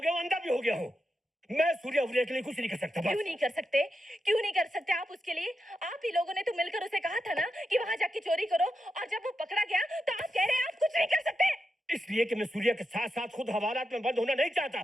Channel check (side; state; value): both; normal; correlation 0.87